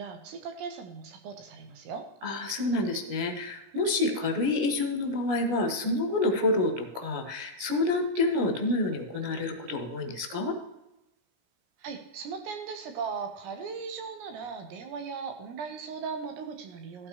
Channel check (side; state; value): left; late; 17 ms